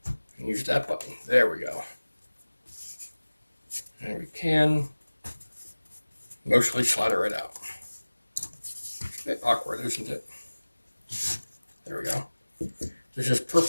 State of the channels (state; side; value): inverted; both; correlation -1.00